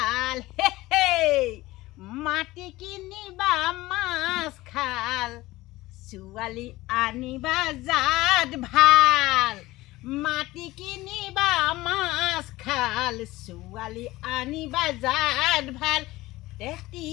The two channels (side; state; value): right; quieter; 18.6 dB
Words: মাটি কিনিবা মাছ খাল, ছোৱালী আনিবা জাত ভাল। মাটি কিনিবা মাছ খাল, ছোৱালী আনিবা জাত ভাল।